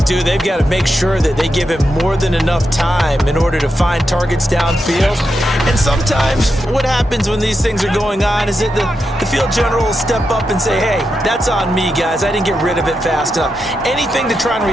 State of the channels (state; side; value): normal; both; correlation 0.86